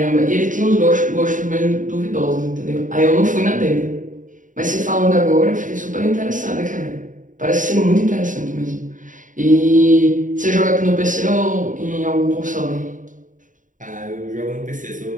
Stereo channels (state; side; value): late; left; 0.38 ms